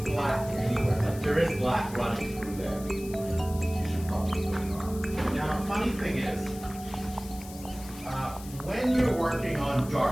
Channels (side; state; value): left; noise; hiss, 16 dB below the sound